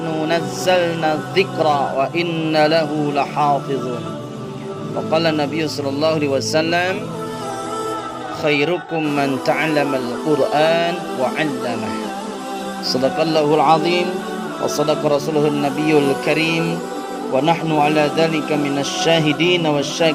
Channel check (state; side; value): identical; both; correlation 1.00